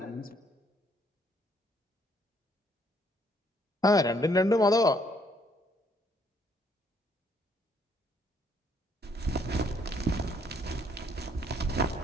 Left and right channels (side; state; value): both; normal; correlation 0.67